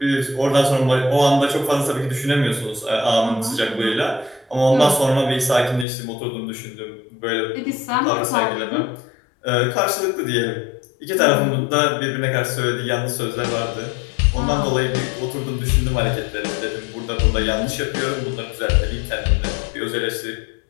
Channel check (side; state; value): right; drops out; at 5.9 s